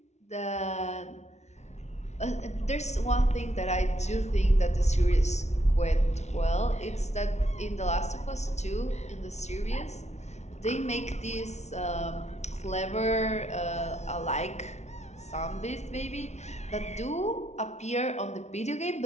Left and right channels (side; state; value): right; late; 0.32 ms